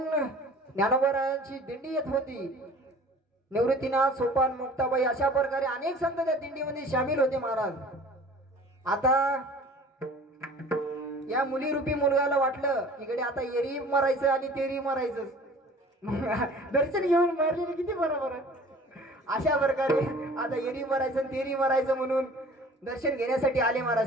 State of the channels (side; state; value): both; normal; correlation 0.46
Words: ज्ञानोबारायांची दिंडी येत होती. निवृत्तीनाथ, सोपान, मुक्ताबाई अशा प्रकारे अनेक संत त्या दिंडीमध्ये सामील होते महाराज. आता या मुलीरूपी मुलगाला वाटलं इकडे आता एरी मरायचं आणि तेरी मरायचं, दर्शन घेऊन मारलेली किती बरोबर आहे. अशा प्रकारे आता एरी मरायचं तेरी मरायचं म्हणून दर्शन घेण्यासाठी आले